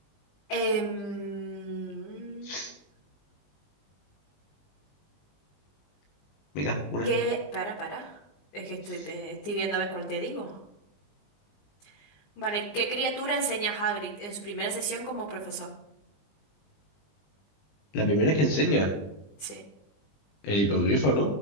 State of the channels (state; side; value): late; right; 20 ms